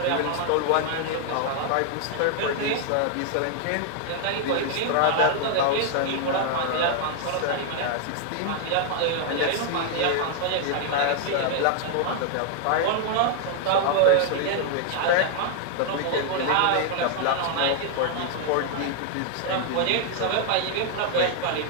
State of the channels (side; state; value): both; different; correlation 0.00